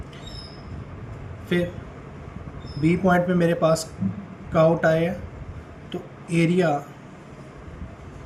फिर बी पॉइंट पे मेरे पास काउ टाई है, तो एरिया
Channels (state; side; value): identical; both; correlation 1.00